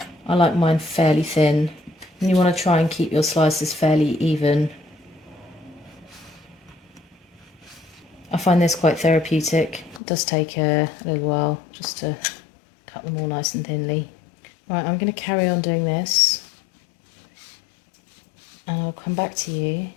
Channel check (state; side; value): drops out; right; at 10.0 s